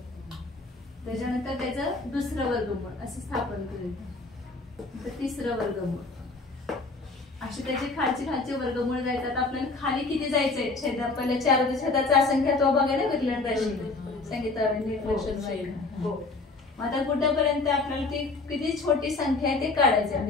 त्याच्यानंतर त्याचं दुसरं वर्गमूळ असं स्थापन करायचं. तिसरं वर्गमूळ असे त्याचे खालचे वर्गमूळ जायचं. आपल्याला खाली किती जायचंय? छेदा पल्ल्याच्या अर्धछेदाचा असंख्यात्वा बघायला विरलन राशी सांगितलं. आता कुठपर्यंत आपल्याला ती किती छोटी संख्या आहे ते काढायचं,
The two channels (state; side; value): quieter; right; 3.6 dB